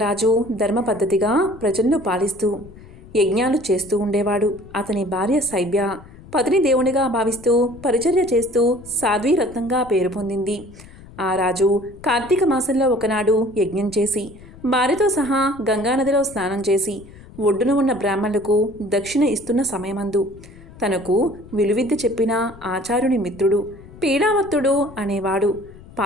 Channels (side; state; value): left; noise; rumble, 20 dB below the sound